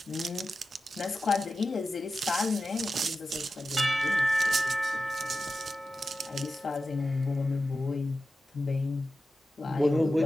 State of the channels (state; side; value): normal; both; correlation 0.92